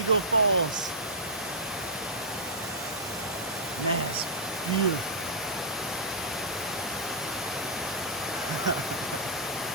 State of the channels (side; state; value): both; normal; correlation -0.12